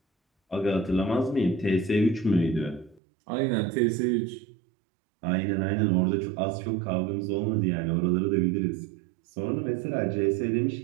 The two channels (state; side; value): drops out; left; at 3.0 s